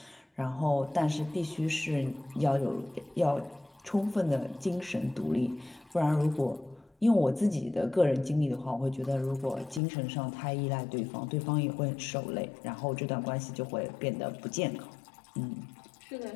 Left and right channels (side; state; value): right; drops out; at 9.8 s